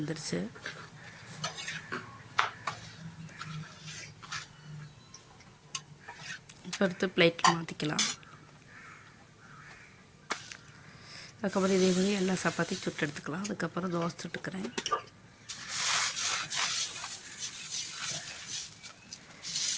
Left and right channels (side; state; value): both; identical; correlation 1.00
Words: இப்போ எடுத்து பிளேட்டில் மாற்றிக்கலாம். அதுக்கப்புறம் இதே மாதிரி எல்லா சப்பாத்தியும் சுட்டு எடுத்துக்கலாம். அதுக்கப்புறம் தோசை சுட்டுக்கிறேன்.